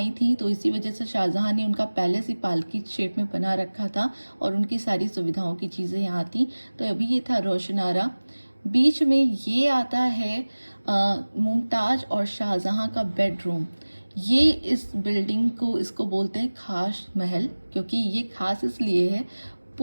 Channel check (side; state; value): both; inverted; correlation -1.00